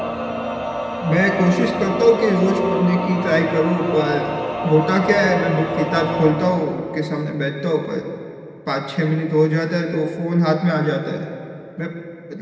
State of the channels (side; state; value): both; identical; correlation 1.00